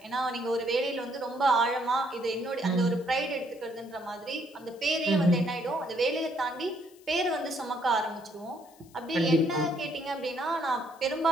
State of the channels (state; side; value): noise; left; hiss, 27 dB below the sound